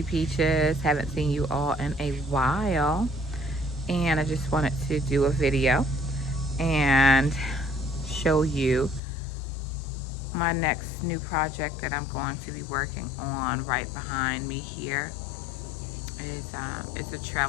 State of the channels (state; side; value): drops out; right; at 9.0 s